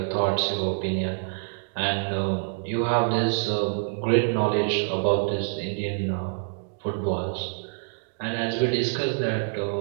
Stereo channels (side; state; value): left; silent; digital silence